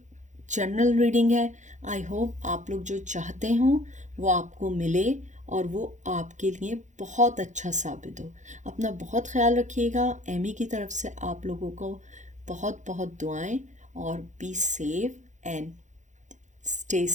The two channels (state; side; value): late; left; 0.35 ms